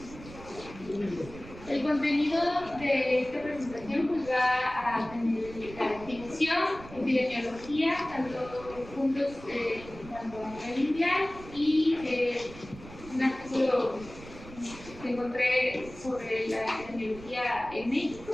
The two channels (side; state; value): right; noise; rumble, 16 dB below the sound